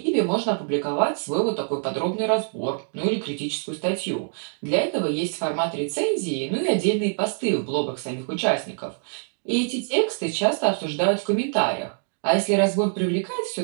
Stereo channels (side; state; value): left; silent; 60 dB below the other